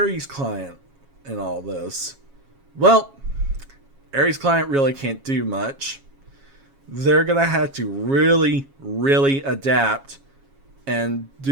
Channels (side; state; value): left; late; 7.3 ms